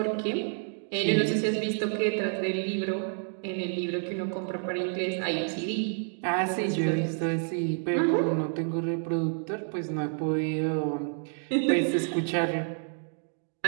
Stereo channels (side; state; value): left; silent; 58 dB below the other